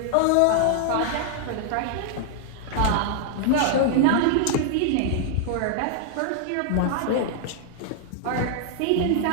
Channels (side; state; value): both; different; correlation 0.00